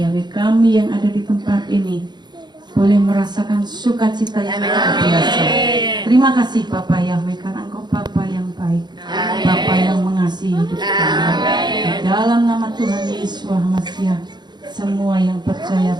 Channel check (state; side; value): late; left; 0.21 ms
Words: kami yang ada di tempat ini boleh merasakan sukacita yang luar biasa. Terima kasih Bapak Yahweh, karena Engkau Bapa yang baik, Bapa yang mengasihi hidup kami. Di dalam nama Tuhan Yesus Masiah, semua yang percaya